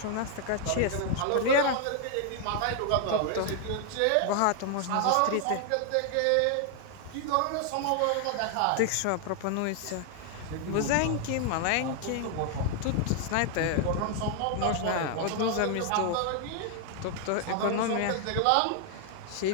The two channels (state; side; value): different; both; correlation 0.00